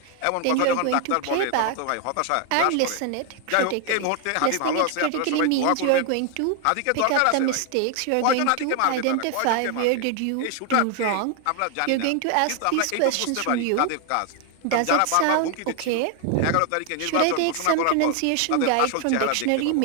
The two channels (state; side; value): different; both; correlation 0.00